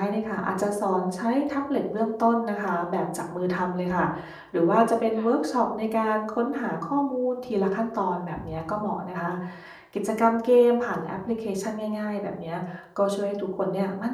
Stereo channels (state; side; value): identical; both; correlation 1.00